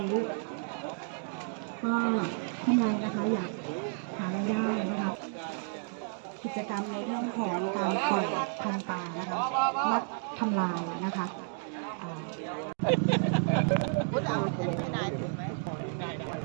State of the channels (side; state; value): left; silent; 57 dB below the other